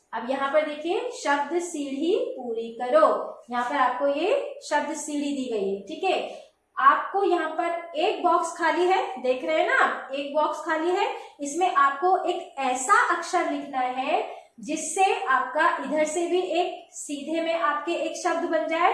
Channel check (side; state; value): both; identical; correlation 1.00